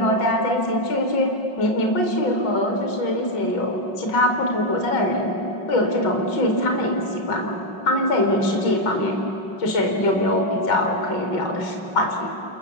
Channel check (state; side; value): late; right; 5.4 ms